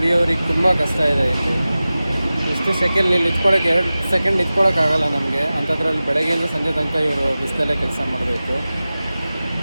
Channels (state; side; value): inverted; both; correlation -0.96